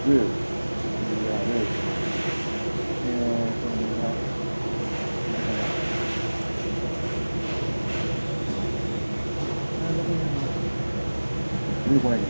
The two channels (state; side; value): inverted; both; correlation -1.00